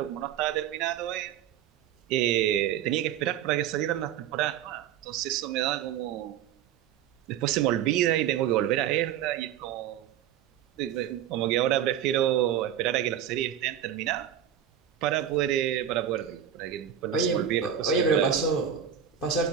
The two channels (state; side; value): quieter; left; 9.6 dB